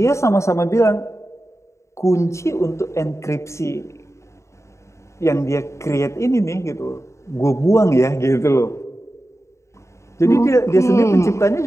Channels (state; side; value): late; right; 0.14 ms